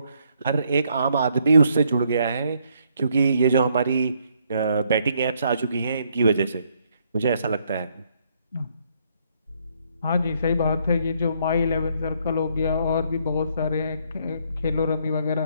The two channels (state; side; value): inverted; both; correlation -0.71